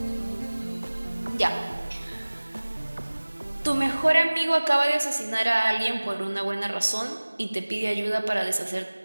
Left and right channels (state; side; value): inverted; both; correlation -1.00